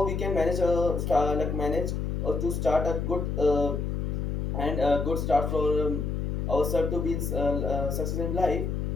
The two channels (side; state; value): left; noise; hum, 1 dB below the sound